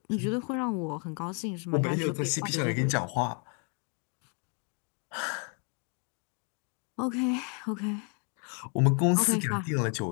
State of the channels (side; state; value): right; quieter; 38.2 dB